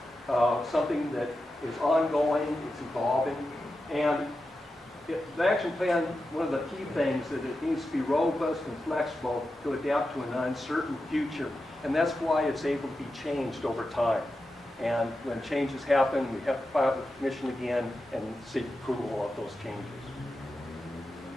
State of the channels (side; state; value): both; normal; correlation 0.90